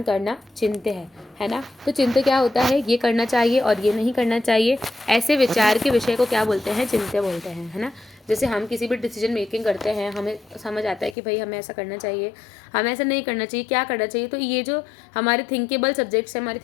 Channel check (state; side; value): drops out; right; at 11.2 s